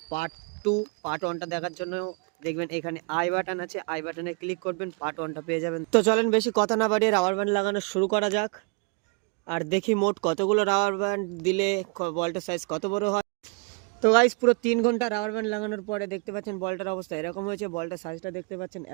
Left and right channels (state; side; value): quieter; left; 33.0 dB